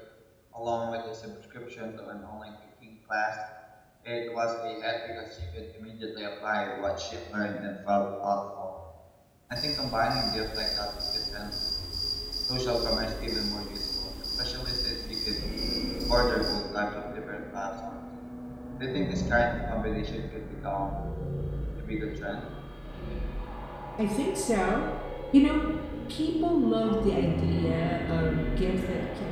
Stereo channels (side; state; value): both; identical; correlation 1.00